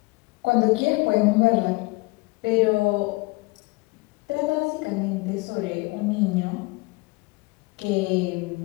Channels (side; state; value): right; quieter; 25.0 dB